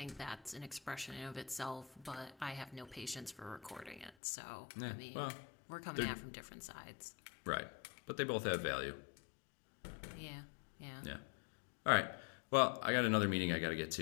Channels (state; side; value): drops out; right; at 4.1 s